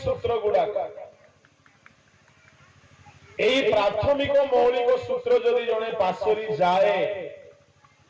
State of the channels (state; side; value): identical; both; correlation 1.00